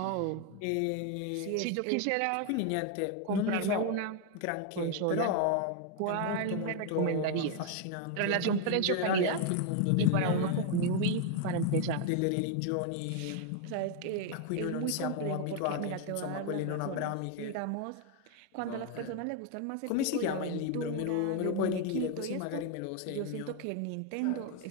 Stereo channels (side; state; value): both; different; correlation 0.01